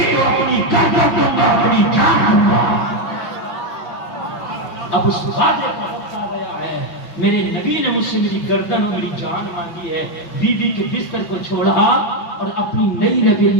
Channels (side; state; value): right; late; 5.8 ms